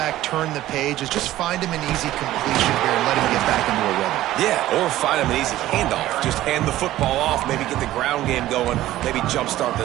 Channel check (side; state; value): left; quieter; 14.7 dB